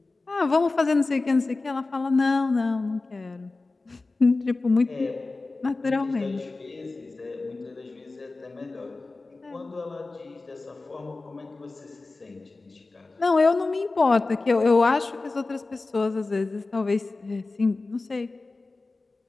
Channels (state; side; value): quieter; right; 3.5 dB